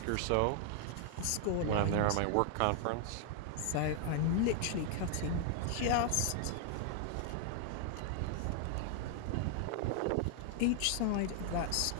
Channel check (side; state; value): both; different; correlation 0.00